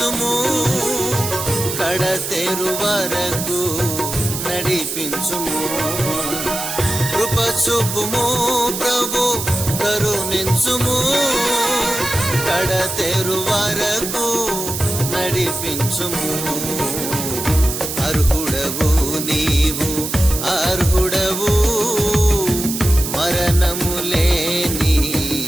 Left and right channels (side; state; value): right; noise; hiss, 5 dB below the sound